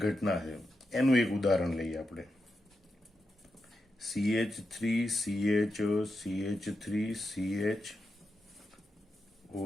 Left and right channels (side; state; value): both; normal; correlation 0.87